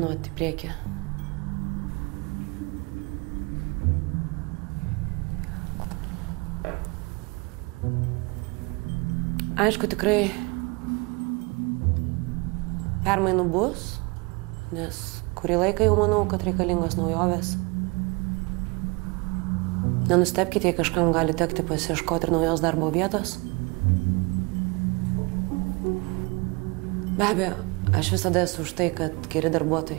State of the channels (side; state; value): left; quieter; 28.3 dB